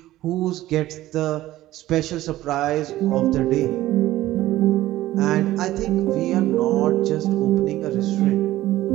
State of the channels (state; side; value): quieter; left; 15.4 dB